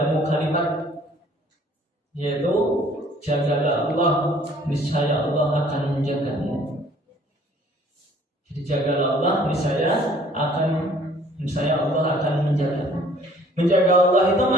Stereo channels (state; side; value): normal; both; correlation 0.56